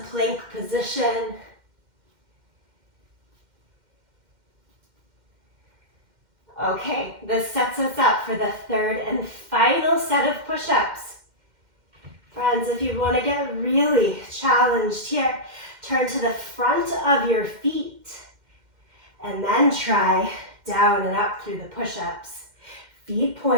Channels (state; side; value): late; left; 2.1 ms